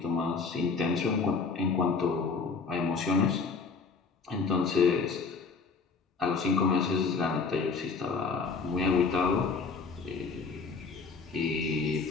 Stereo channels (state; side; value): quieter; right; 4.7 dB